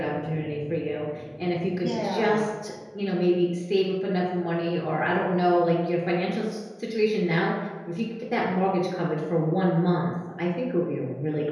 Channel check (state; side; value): identical; both; correlation 1.00